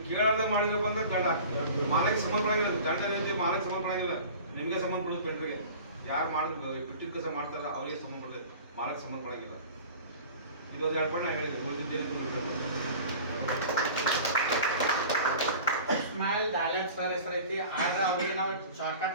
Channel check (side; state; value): both; inverted; correlation -0.41